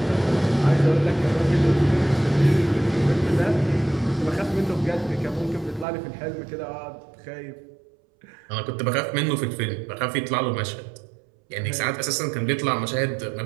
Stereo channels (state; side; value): drops out; left; at 5.9 s